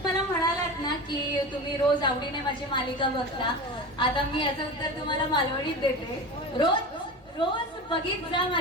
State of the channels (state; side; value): normal; both; correlation 0.29